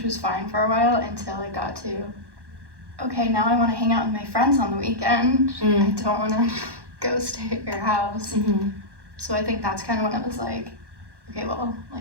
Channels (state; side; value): late; left; 1.1 ms